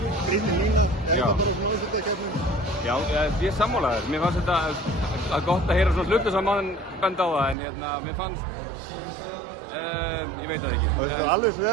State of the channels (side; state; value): left; drops out; at 7.6 s